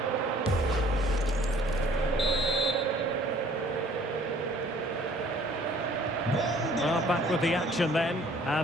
Well, back with the action then,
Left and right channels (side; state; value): both; normal; correlation 0.55